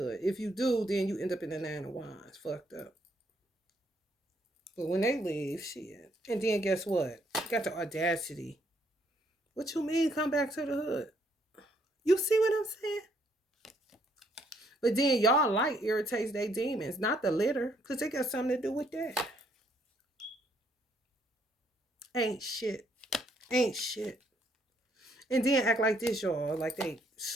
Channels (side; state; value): both; normal; correlation 0.70